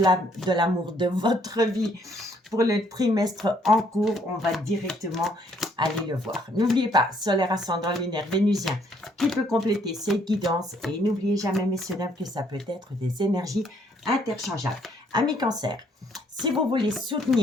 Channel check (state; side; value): normal; both; correlation 0.67